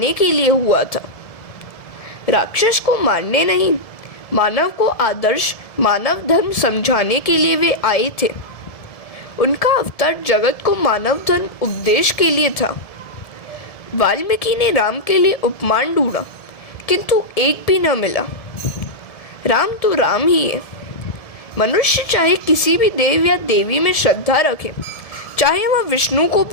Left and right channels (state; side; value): late; right; 1.7 ms